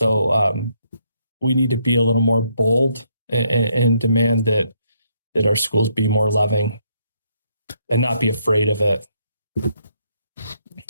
we need to be a little more bold and demand that our schools be more loving and not be afraid of it.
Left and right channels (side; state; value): both; inverted; correlation -0.73